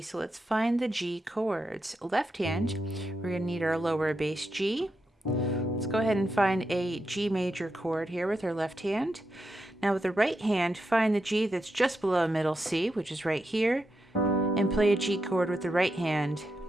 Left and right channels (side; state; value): both; normal; correlation 0.86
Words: So let's find the G chords. Left hand, we're going to need our lower bass G. Let's go ahead and find a G major chord here with our left hand. Now with the right hand, find the G that's just below middle C, which is right here, and play a G chord with the right hand.